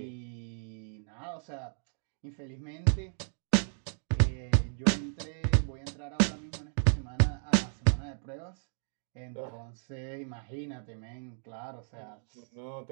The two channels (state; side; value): silent; left; digital silence